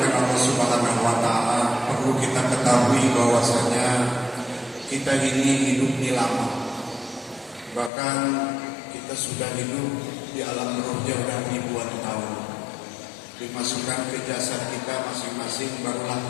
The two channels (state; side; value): drops out; right; at 7.9 s